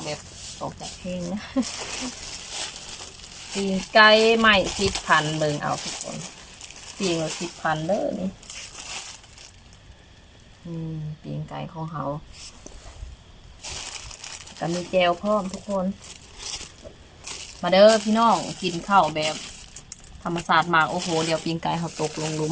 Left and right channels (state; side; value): identical; both; correlation 1.00